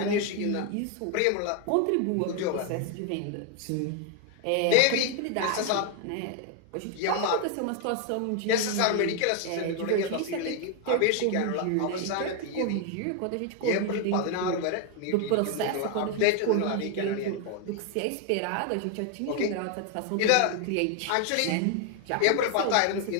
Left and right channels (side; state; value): both; different; correlation 0.01